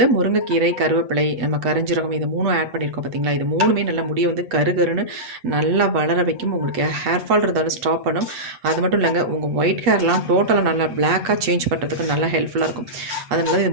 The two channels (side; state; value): left; late; 8.0 ms